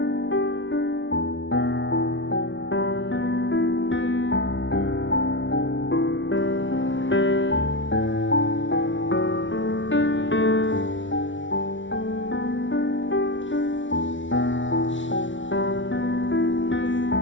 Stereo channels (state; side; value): late; right; 0.56 ms